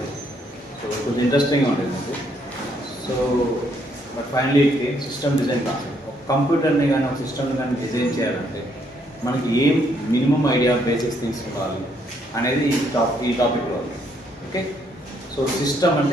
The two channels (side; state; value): both; normal; correlation 0.71